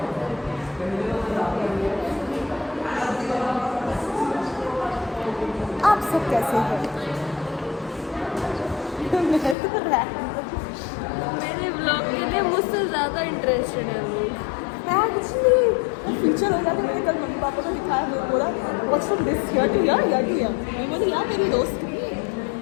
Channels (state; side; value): drops out; right; at 9.6 s